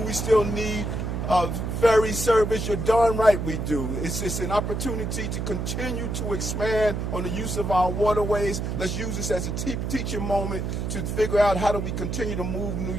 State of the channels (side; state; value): right; noise; hum, 2 dB below the sound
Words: still need ferry service? You're darn right we do. It's an opportunity to continue to expand on the use of our waterways. Let's use this as a teaching moment to figure out how do we continue to move New